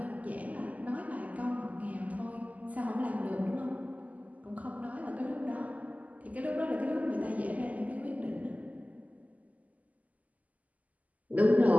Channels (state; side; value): late; left; 0.076 ms